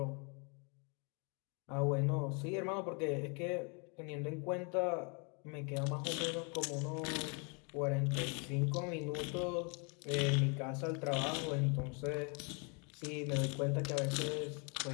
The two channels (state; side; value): quieter; right; 35.1 dB